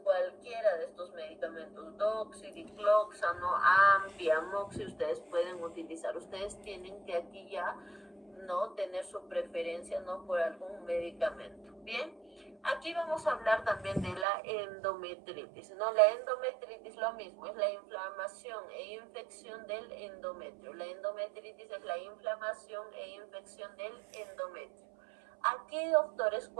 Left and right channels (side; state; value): left; drops out; at 14.2 s